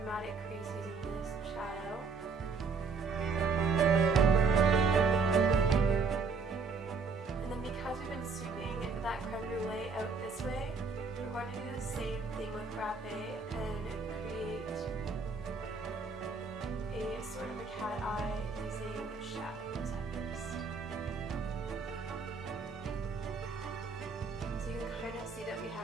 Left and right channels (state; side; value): quieter; left; 4.9 dB